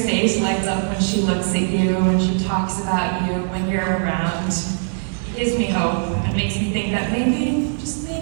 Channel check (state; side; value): silent; left; digital silence